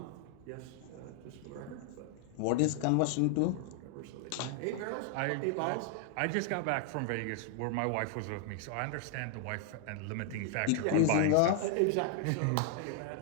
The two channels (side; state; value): both; different; correlation 0.00